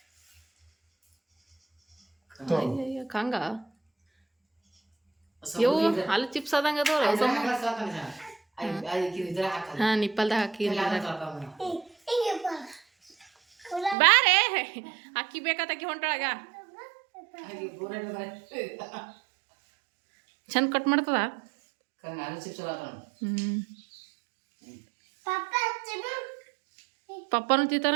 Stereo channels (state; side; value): drops out; left; at 14.0 s